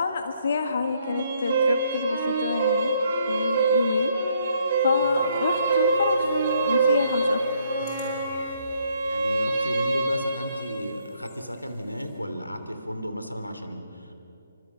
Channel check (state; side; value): inverted; both; correlation -0.69